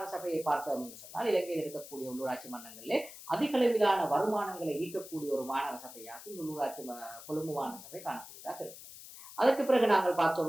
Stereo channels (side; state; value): left; noise; hiss, 15 dB below the sound